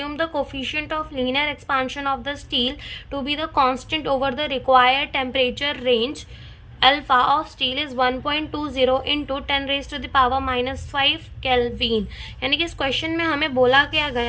the coefficient of linear expansion of the steel to be the constant over the required temperature range. Alpha of steel is 1.20 into 10 raised to the power -5 kelvin. यानी कि इस question में हमें बोला क्या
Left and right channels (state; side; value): identical; both; correlation 1.00